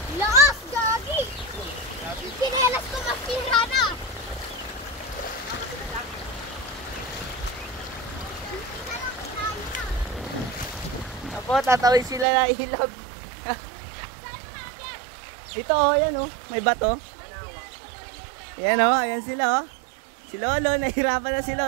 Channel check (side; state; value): left; drops out; at 12.2 s